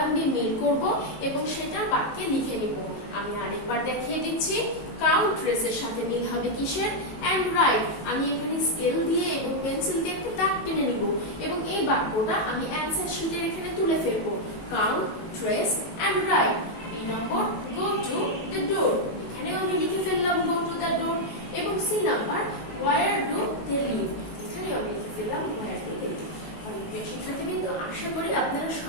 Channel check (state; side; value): late; right; 19 ms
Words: দিয়ে মিল করব এবং সেটা বাক্যে লিখে নিব। আমি আরেকবার দেখিয়ে দিচ্ছি। কাউন্ট রেসের সাথে মিল হবে কিসের? And write. আমি এখানে স্কেল দিয়ে এবং পেন্সিল দিয়ে একটা দাগ টেনে নিব এবং এই বাক্যটা আমি অ্যানসার শিটের এখানে তুলে ফেলবো। Count, trace and write. B number, go to the door. এখানেও আমি লিখে ফেললাম গো টু দ্য ডোর। এবং C number, where do they live. এখানেও আমি লিখে ফেললাম ওয়্যার ডু দে লিভ। তাহলে প্রিয় শিক্ষার্থীবৃন্দ, আশা করি আপনারা